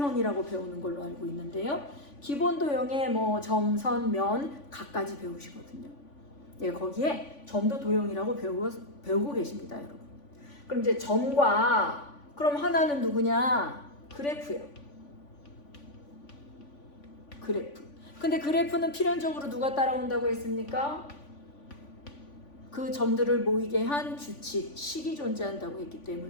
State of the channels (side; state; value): right; late; 3.5 ms